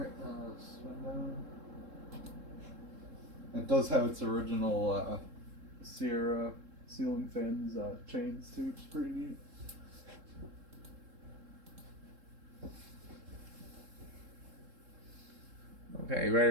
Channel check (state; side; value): late; left; 3.7 ms